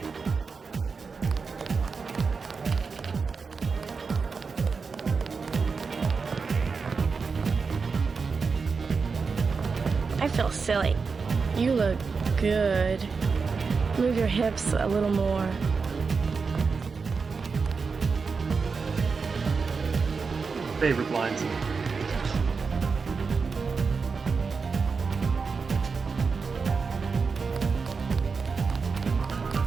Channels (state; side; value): quieter; left; 5.0 dB